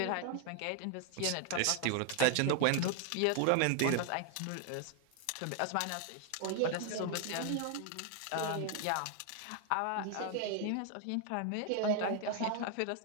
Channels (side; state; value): both; different; correlation 0.00